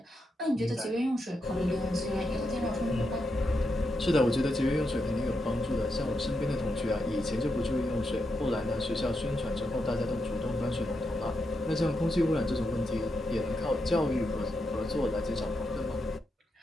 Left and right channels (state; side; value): normal; both; correlation 0.84